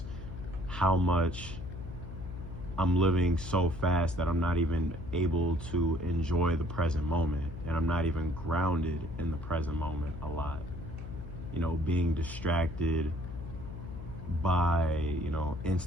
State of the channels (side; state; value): left; noise; hum, 10 dB below the sound